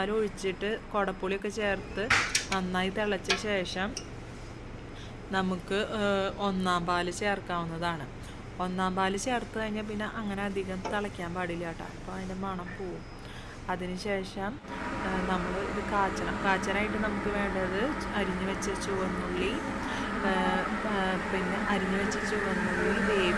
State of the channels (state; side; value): identical; both; correlation 1.00